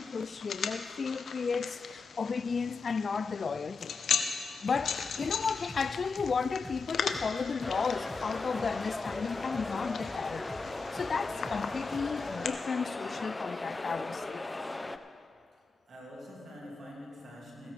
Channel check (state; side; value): quieter; right; 4.6 dB